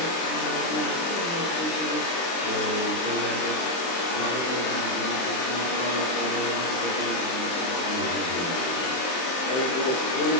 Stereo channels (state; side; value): late; right; 23 ms